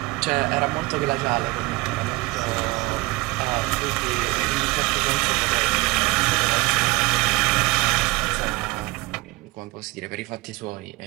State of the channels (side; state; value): left; quieter; 22.0 dB